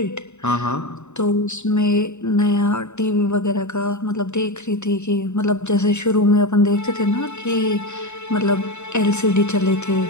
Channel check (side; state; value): right; late; 0.82 ms